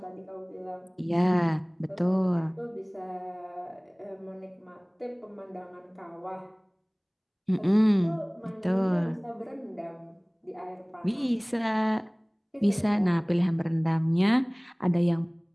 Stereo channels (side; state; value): both; identical; correlation 1.00